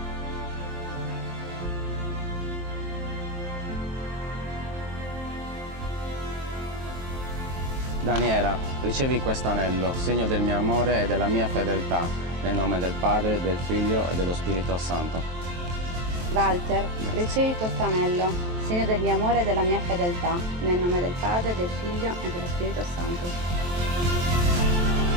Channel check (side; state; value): left; late; 23 ms